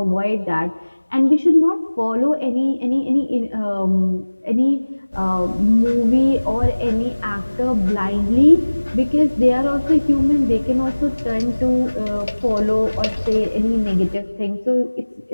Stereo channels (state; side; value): inverted; both; correlation -1.00